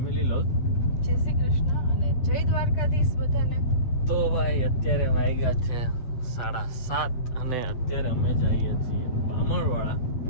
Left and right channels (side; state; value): right; late; 8.2 ms